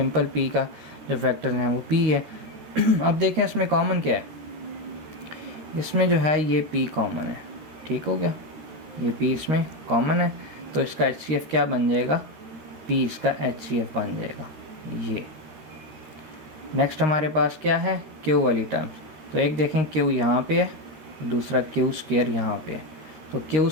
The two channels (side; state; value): left; late; 13 ms